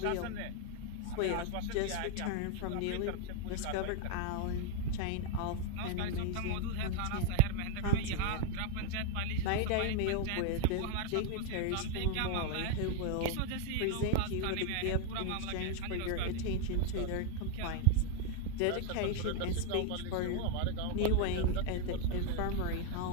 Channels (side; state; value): both; different; correlation 0.00